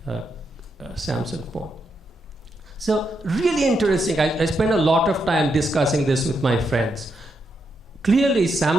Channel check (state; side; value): normal; both; correlation 0.82